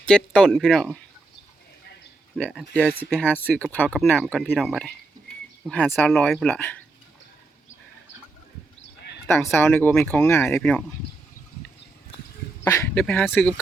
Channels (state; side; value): quieter; left; 3.1 dB